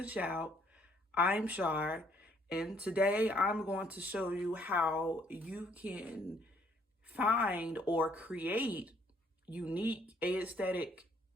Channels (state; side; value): normal; both; correlation 0.65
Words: Shout. I'm Shar, and today I'm going to show you how you can find or create unique aesthetic